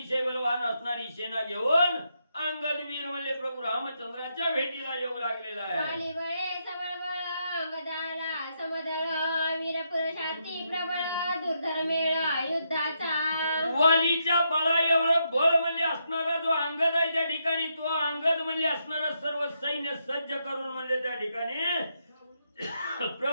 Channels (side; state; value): both; inverted; correlation -0.80